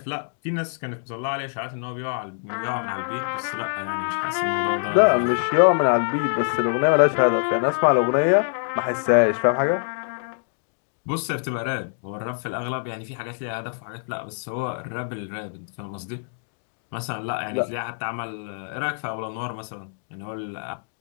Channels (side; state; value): right; silent; digital silence